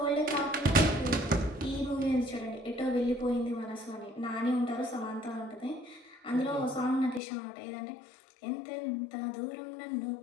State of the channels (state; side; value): drops out; right; at 7.2 s